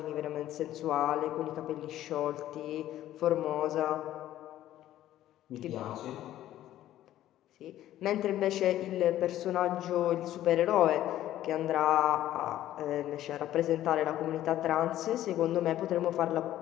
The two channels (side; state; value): right; quieter; 13.2 dB